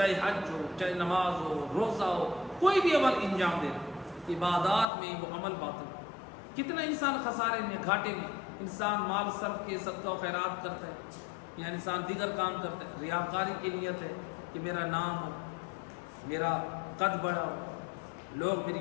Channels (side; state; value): right; drops out; at 4.9 s